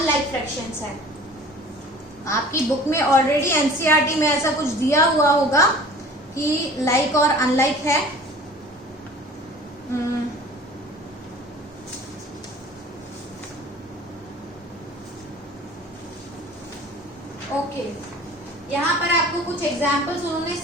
फ्रैक्शंस है। आपकी बुक में ऑलरेडी एनसीईआरटी में ऐसा कुछ दिया हुआ होगा कि लाइक और अनलाइक है। ओके, यहाँ पर आपको कुछ एग्जाम्पल्स उन्होंने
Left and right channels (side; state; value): both; normal; correlation 0.45